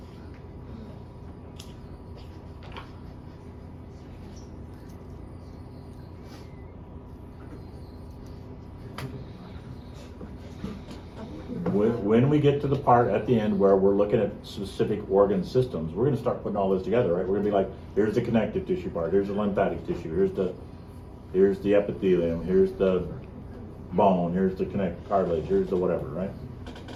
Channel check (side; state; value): both; identical; correlation 1.00